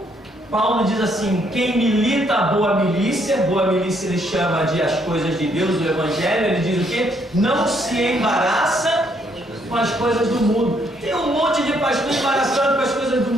Paulo diz assim: quem milita a boa milícia ele chama de as coisas de Deus, o Evangelho, ele diz o quê? Não se embaraça com as coisas do mundo. Tem um monte de pastor embaraçado com as coisas do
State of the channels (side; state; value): both; normal; correlation 0.70